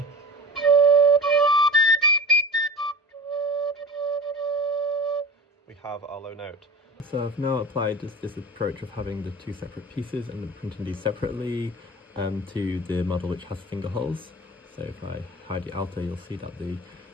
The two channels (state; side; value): normal; both; correlation 0.34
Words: we have our low note. So I've now applied this approach of having the two separate pieces and then printing these separately to the model which has finger holes. So if I hide the outer, you'll see that